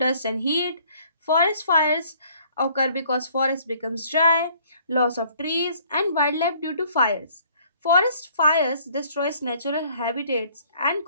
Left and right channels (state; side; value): inverted; both; correlation -0.59